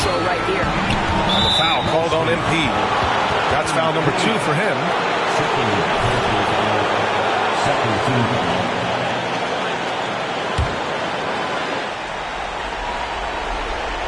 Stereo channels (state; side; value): identical; both; correlation 1.00